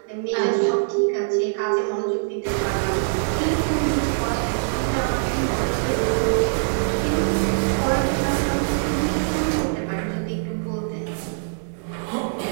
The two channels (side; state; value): left; silent; digital silence